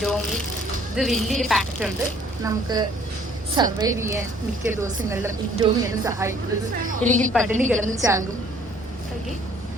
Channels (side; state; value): both; normal; correlation 0.59